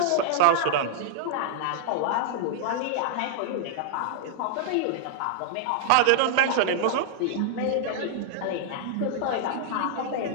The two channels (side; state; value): both; different; correlation -0.01